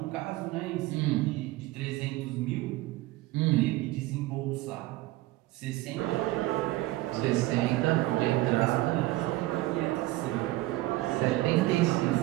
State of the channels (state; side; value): quieter; left; 18.3 dB